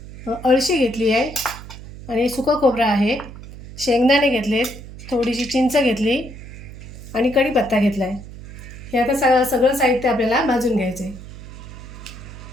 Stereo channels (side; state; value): right; noise; hum, 14 dB below the sound